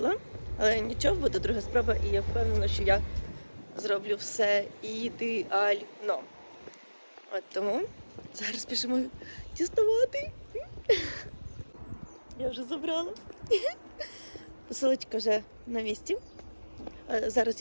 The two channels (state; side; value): inverted; both; correlation -1.00